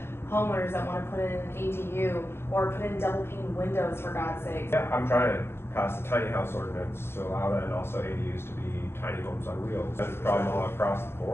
Homeowners that want to put in an ADU or put in double pane windows, for God's sake. Yeah, I'm trying to pass the tiny house ordinance to allow that, and also ADUs to be tiny homes on wheels. That's a problem all across the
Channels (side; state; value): right; late; 0.12 ms